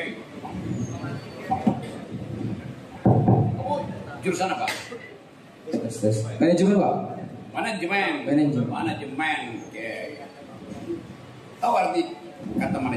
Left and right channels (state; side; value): identical; both; correlation 1.00